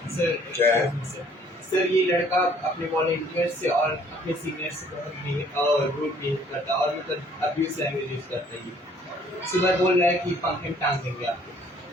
सर क्या है? सर ये लड़का अपने वॉलंटियर से और अपने सीनियर से बहुत रूड बिहेव करता है और मतलब अब्यूज लैंग्वेज यूज करता है। ये सुबह बोल रहा है कि पंखे में टांग देंगे आपको,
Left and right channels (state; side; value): normal; both; correlation 0.59